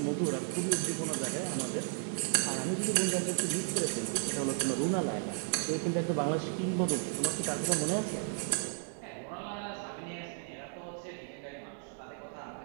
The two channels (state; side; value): silent; left; 55 dB below the other